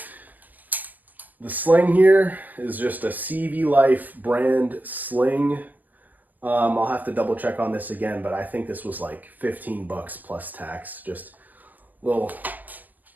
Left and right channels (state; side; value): late; left; 0.083 ms